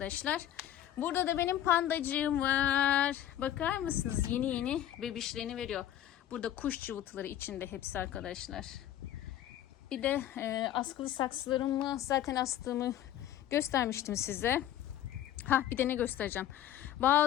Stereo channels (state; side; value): quieter; right; 11.9 dB